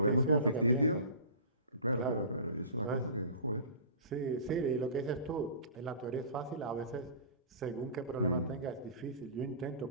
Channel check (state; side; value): inverted; both; correlation -0.38